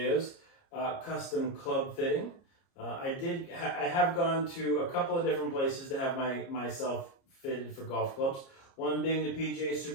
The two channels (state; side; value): late; right; 30 ms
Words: custom club fitting. I have gone to a couple of different places to have myself fitted for golf clubs. One being the PGA